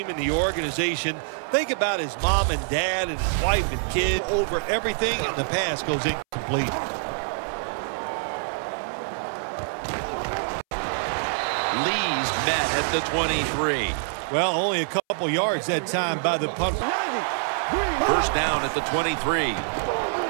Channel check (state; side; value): silent; left; 61 dB below the other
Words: and the organization. Think about his mom and dad and his wife and kid over everything, and the pass goes incomplete. Lee's met at the 23. Well, only a couple yards that time by the punt. First down at the 23.